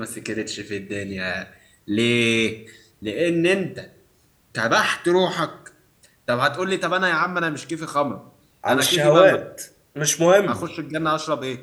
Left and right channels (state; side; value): identical; both; correlation 1.00